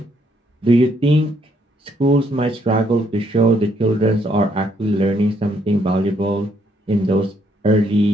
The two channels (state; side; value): normal; both; correlation 0.71